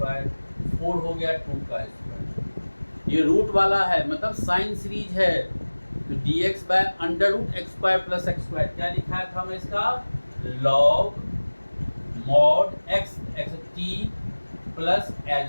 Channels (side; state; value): both; inverted; correlation -1.00